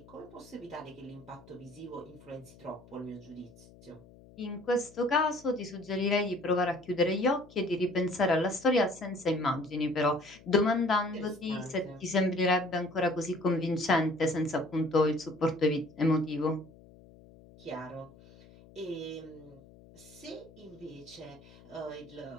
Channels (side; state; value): left; noise; hum, 23 dB below the sound